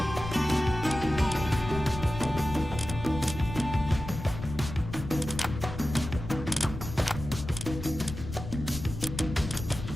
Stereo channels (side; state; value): left; noise; rumble, 9 dB below the sound